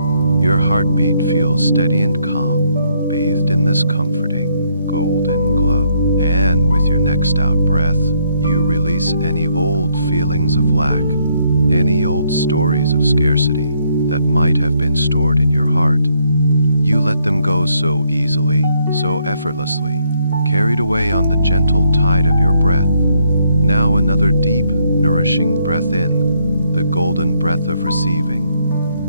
Your heartbeat feels steady and calm, bathed in this comforting, golden glow. And with your next out breath, you release any old feelings of lack, any old stories of scarcity that might have been stored in your heart. You let them go so easily, so effortlessly, carried away on the gentle tide of your breath. Now another deep, nourishing breath in, the golden breath of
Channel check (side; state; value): both; inverted; correlation -0.72